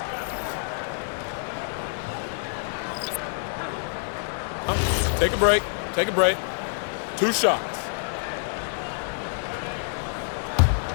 Take a break. Take a break. 2 shots.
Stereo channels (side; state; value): right; silent; 60 dB below the other